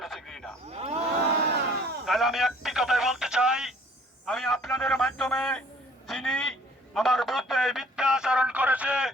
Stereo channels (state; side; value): normal; both; correlation 0.56